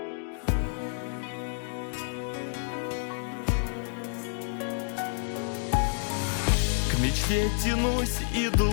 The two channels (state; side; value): silent; right; digital silence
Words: К мечте тянусь, иду